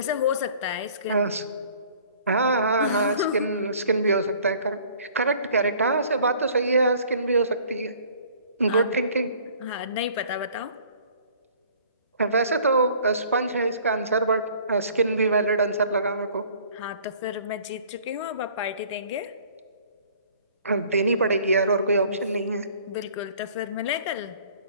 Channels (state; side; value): inverted; both; correlation -0.53